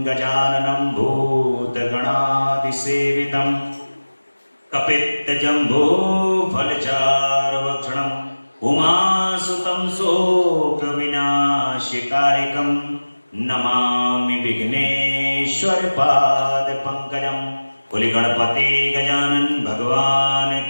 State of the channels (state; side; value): inverted; both; correlation -1.00